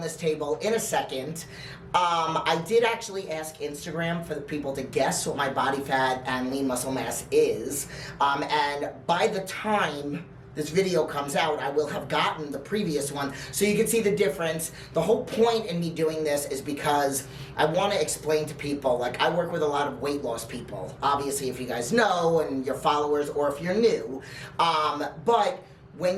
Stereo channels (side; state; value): both; identical; correlation 1.00